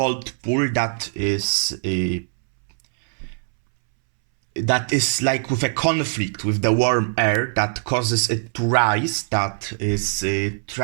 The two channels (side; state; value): left; silent; 64 dB below the other